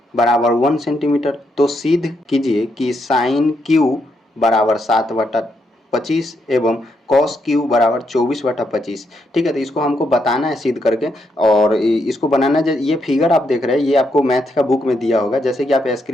बराबर 1 सेंटीमीटर। तो सिद्ध कीजिए कि साइन क्यू बराबर 7/25 एवं कॉस क्यू बराबर 24/25। ठीक है, तो इसको हमको बताना है सिद्ध करके। और इसको बनाना, ये फिगर आप देख रहे हैं, ये आपको मैथ का बुक में दिया होगा। जैसे कि आप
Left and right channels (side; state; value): both; normal; correlation 0.79